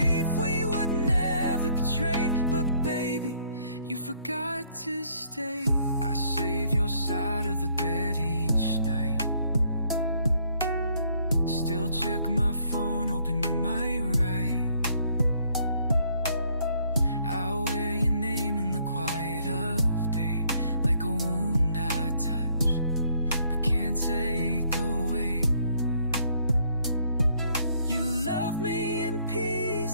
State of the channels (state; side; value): inverted; both; correlation -0.66